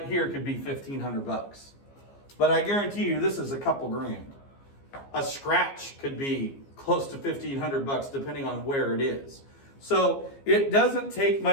here could be $1,500. But I guarantee you this is a couple grand. A scratch could be close to $1,500 depending on where it is. So it doesn't take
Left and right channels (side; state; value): right; late; 15 ms